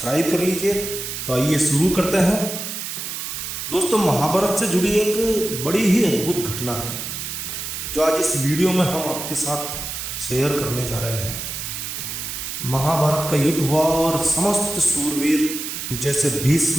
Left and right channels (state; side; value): noise; right; hiss, 6 dB below the sound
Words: कर लीजिए। तो आइए शुरू करते हैं। दोस्तों, महाभारत से जुड़ी एक बड़ी ही अद्भुत घटना है जो आज इस वीडियो में हम आपके साथ शेयर करने जा रहे हैं। महाभारत का युद्ध हुआ और समस्त सूरवीर जैसे